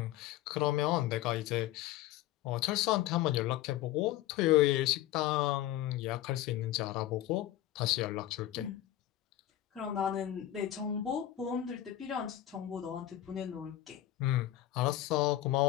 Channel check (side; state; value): right; quieter; 13.5 dB